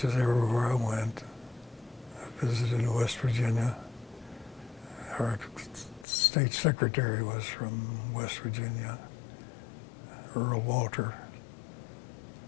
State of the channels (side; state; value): right; drops out; at 6.1 s